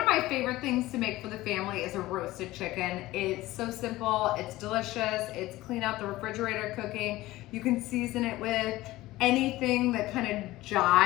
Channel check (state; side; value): quieter; right; 17.5 dB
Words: of my favorite things to make for the family is a roasted chicken. It's so simple, it's delicious, it's clean out the refrigerator cooking. You can season it with anything that kind of